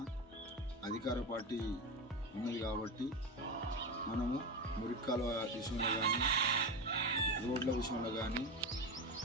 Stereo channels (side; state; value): both; normal; correlation 0.19